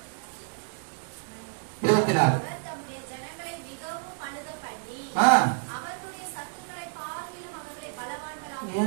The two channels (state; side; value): silent; left; 58 dB below the other